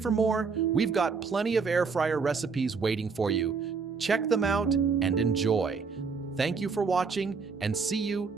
more, we've got plenty of air fryer recipes waiting for you. Check them out and enjoy. Thank you for watching, and see you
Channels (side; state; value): left; quieter; 5.1 dB